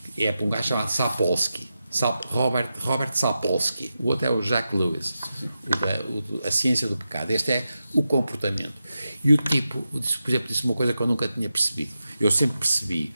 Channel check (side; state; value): both; inverted; correlation -0.90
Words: é para um gajo chamado Sapolsky, Robert Sapolsky. O outro é o Jack Lewis, A Ciência do Pecado. Este é o comportamento. E o tipo, por exemplo, disse uma coisa que eu nunca tinha percebido. Eu sempre percebi